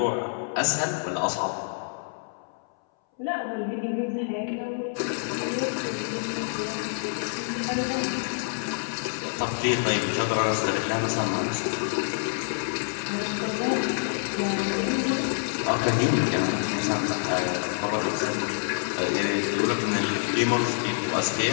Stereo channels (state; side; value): silent; right; 60 dB below the other